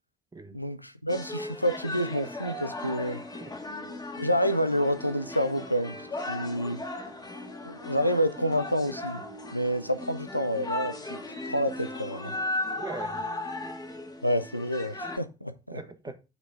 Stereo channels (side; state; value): both; inverted; correlation -0.62